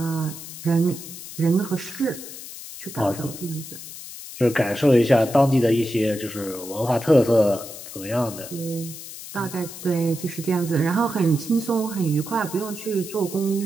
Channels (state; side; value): noise; left; hiss, 12 dB below the sound